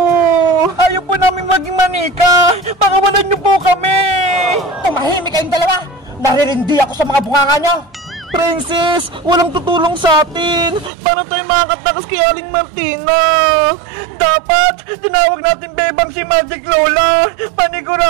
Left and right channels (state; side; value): drops out; left; at 10.9 s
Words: Ayaw po namin maging manika. Pakawalan niyo po kami. Tumahimik kayong dalawa. Naririndi ako sa mga bunganga niyo. Princess, walang tutulong sa atin. Para tayo makakatakas kay Aling Martina. Dapat, tinawag natin bebang si Magic Lola.